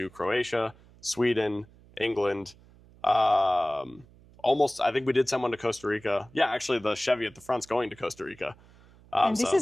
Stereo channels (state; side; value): noise; right; hum, 26 dB below the sound